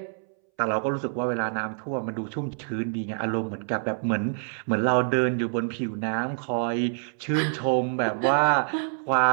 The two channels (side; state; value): left; silent; 61 dB below the other